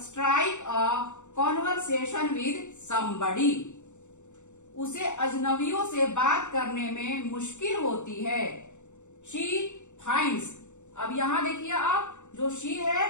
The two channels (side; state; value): right; late; 0.84 ms